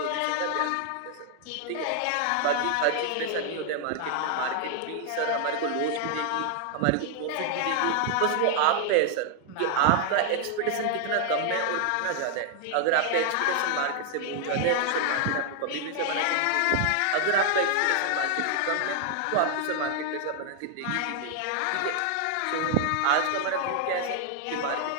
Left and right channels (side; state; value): both; different; correlation 0.00